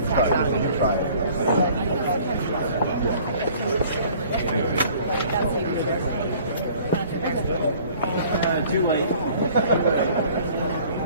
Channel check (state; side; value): inverted; both; correlation -0.53